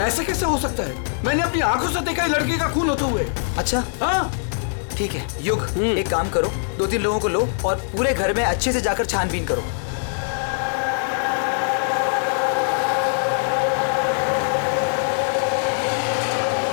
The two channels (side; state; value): right; silent; 61 dB below the other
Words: ऐसे कैसे हो सकता है? मैंने अपनी आंखों से देखा लड़की का खून होते हुए। अच्छा हाँ, ठीक है युग, एक काम करो, 2-3 लोगों को लो और पूरे घर में अच्छे से जाकर छानबीन करो।